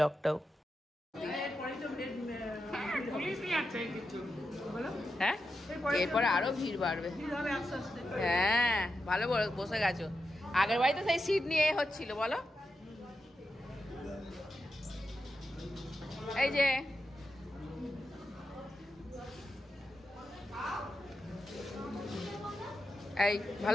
হ্যাঁ, এরপরে আরো ভিড় বাড়বে। হ্যাঁ, ভালো বসে গেছো। আগের বাড়িতে সেই সিট নিয়ে হচ্ছিল বলো। এই যে এই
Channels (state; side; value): normal; both; correlation 0.88